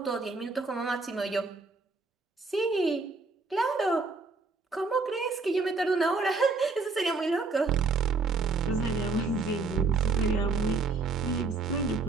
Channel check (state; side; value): quieter; left; 4.0 dB